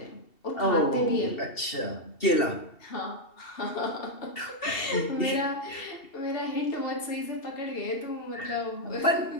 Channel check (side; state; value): right; late; 2.7 ms